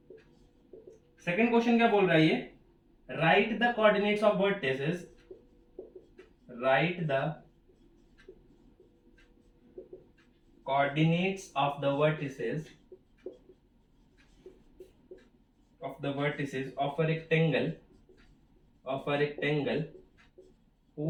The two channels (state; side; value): identical; both; correlation 1.00